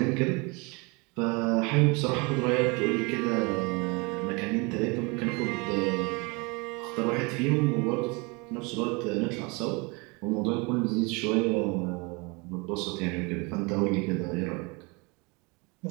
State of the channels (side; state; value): left; quieter; 28.7 dB